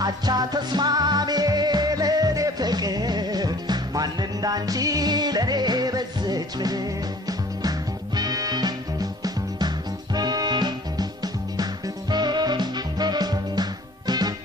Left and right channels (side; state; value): both; normal; correlation 0.51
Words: አቻ ተስማሚ ለኔ ፍቅር ማን እንዳንቺ ለኔ በዘች